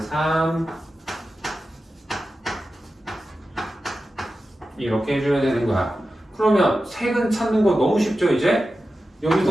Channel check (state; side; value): normal; both; correlation 0.93